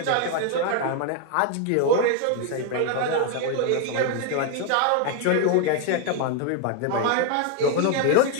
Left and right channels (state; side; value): different; both; correlation 0.00